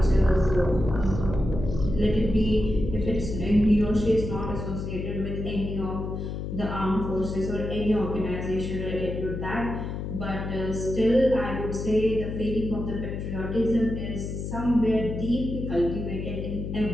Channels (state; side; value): noise; left; hum, 5 dB below the sound